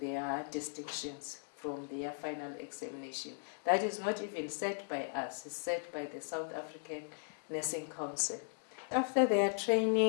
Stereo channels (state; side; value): silent; right; digital silence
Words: distinctions from their final examination. That is not even set by us, it's set by the South African Nursing Council. After their